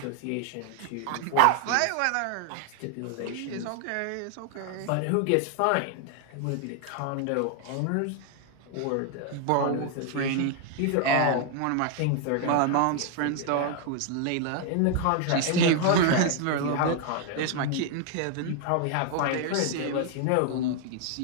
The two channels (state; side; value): different; both; correlation 0.00